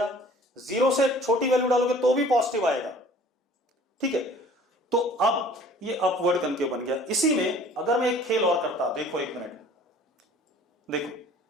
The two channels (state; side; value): normal; both; correlation 0.50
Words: 0 से छोटी वैल्यू डालोगे तो भी पॉजिटिव आएगा। ठीक है, तो अब ये अपवर्ड कनकेव बन गया। इसी में अगर मैं एक खेल और करता, देखो एक मिनट, देखो